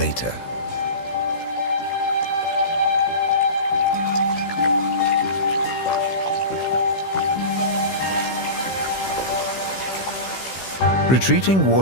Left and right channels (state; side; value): late; right; 16 ms